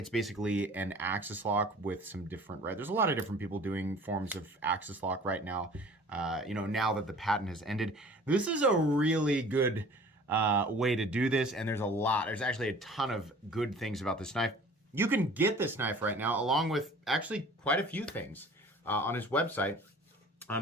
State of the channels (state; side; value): normal; both; correlation 0.47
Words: basically an axis lock with some different, right? There's a lot of different people doing forms of axis lock right now. Now that the patent has ended, this is a really good way to do this. And there's actually a ton of good things about this knife. You can get this knife right now, along with actually quite a few things on his website,